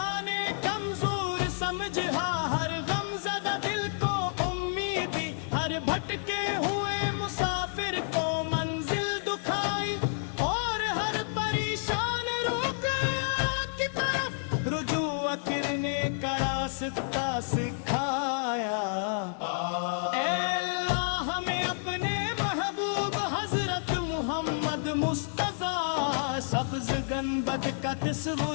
نے کمزور سمجھا، ہر غم زدہ دل کو امید دی، ہر بھٹکے ہوئے مسافر کو منزل دکھائی، اور ہر پریشان روح کی طرف رجوع کرنے کا راستہ سکھایا۔ اے اللہ ہمیں اپنے محبوب حضرت محمد مصطفیٰ سبز گنبد کا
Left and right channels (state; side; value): silent; right; 58 dB below the other